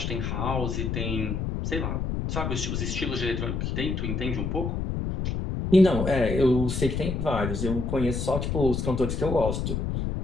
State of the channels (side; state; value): left; noise; rumble, 2 dB below the sound